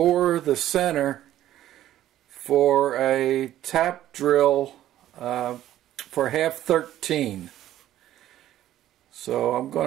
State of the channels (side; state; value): left; quieter; 12.9 dB